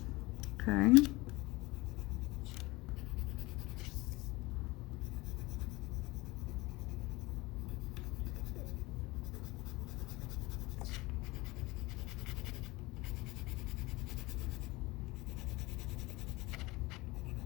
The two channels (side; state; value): right; quieter; 22.0 dB